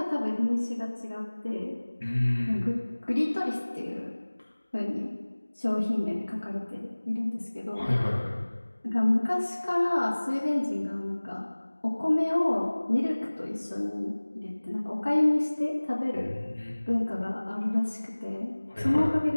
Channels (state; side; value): inverted; both; correlation -1.00